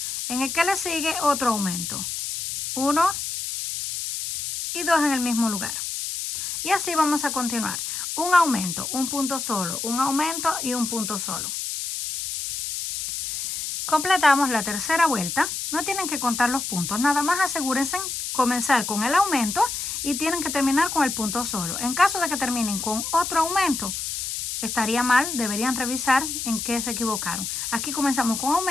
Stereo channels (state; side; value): noise; left; hiss, 4 dB below the sound